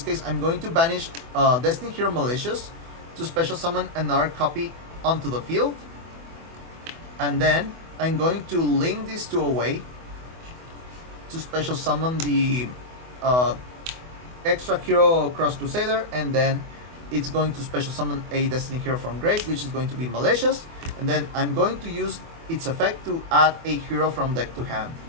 case, I'm going to banish Destiny Hero Malicious to special summon another copy onto the field. And then I'm going to link these two away to special summon the extra hero Cross Crusader, and then it's going to special summon a Destiny Hero from grave, which is going to be Malicious. And then I'm going to use its effect to add a hero from deck to hand.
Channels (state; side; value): late; left; 24 ms